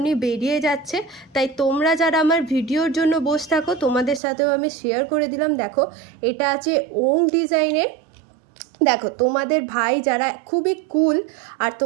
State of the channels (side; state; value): left; drops out; at 4.2 s